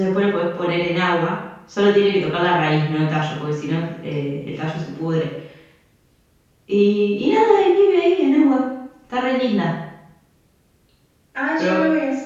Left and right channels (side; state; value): both; identical; correlation 1.00